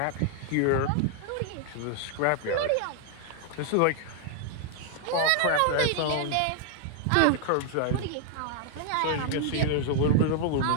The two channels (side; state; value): both; different; correlation 0.00